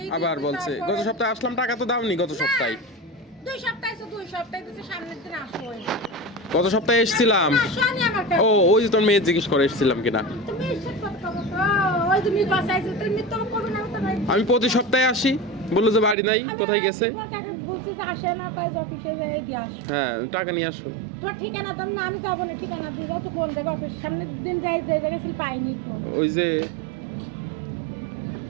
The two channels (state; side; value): drops out; left; at 16.2 s